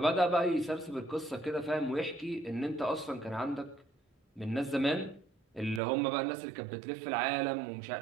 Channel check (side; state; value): left; drops out; at 5.8 s